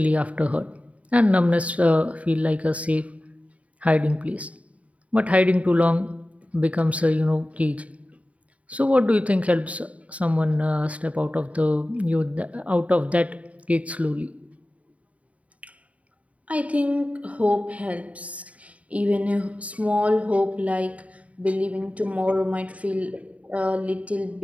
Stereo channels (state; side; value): late; left; 0.067 ms